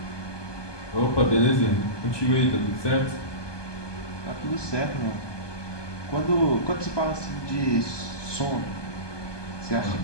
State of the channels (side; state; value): right; late; 1.2 ms